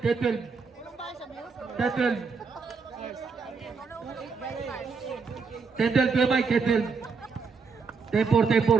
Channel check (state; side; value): quieter; left; 5.0 dB